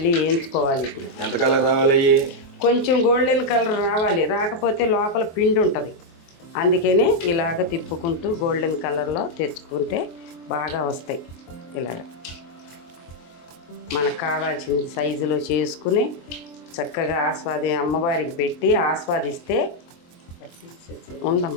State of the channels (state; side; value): late; right; 24 ms